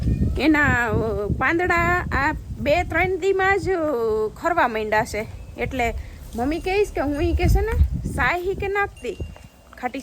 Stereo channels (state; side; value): identical; both; correlation 1.00